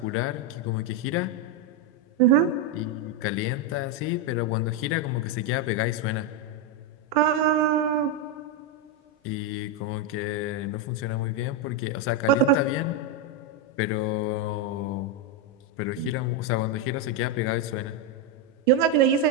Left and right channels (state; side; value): normal; both; correlation 0.04